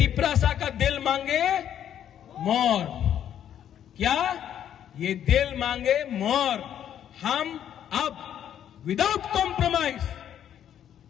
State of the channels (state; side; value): quieter; right; 10.0 dB